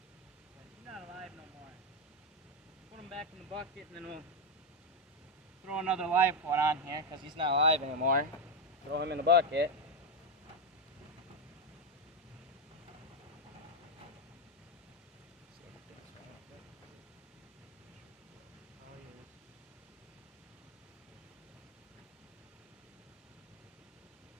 Not alive no more. Put him back in the bucket and then we'll throw another live one on here because he's not alive anymore. Throw him in the bucket.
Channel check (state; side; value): normal; both; correlation 0.06